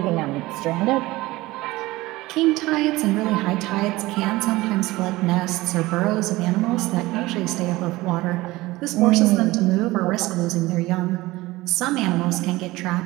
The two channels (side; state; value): left; quieter; 19.3 dB